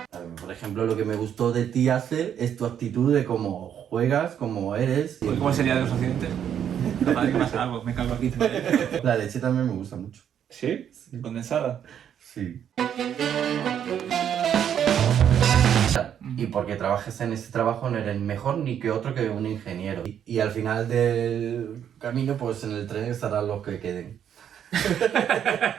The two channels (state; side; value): quieter; left; 9.2 dB